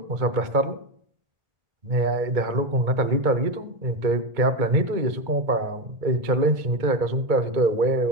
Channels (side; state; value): left; late; 2.2 ms